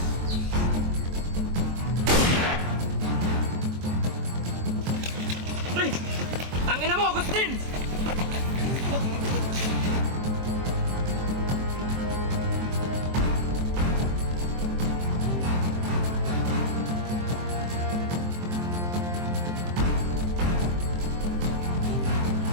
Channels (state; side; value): late; left; 23 ms